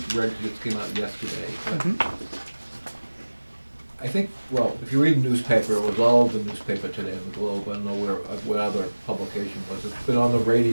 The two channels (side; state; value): both; inverted; correlation -1.00